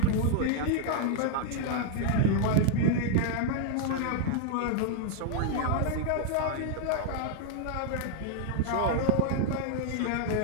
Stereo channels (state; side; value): different; both; correlation -0.01